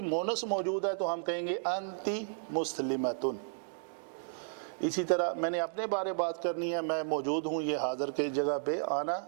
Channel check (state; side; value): silent; left; digital silence